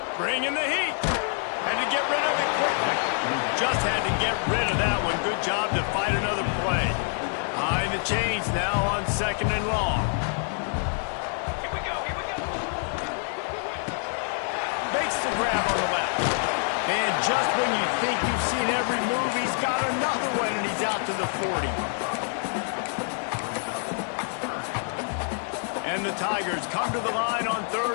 Bringing the heat. Had to get rid of it quickly. Just had to get rid of that one. Good job to fight another play. High the chains now on second and long. Here we go. Makes the grab on the left. And just when you think you've seen every move, he's got another one, and he's out to the 40. And the Tigers come to the line on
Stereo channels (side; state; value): right; silent; 55 dB below the other